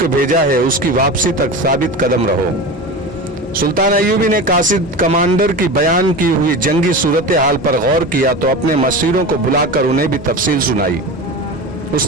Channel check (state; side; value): normal; both; correlation 0.28